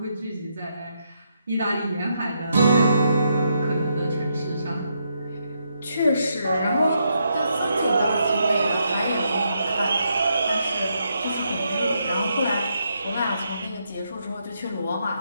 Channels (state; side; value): inverted; both; correlation -0.79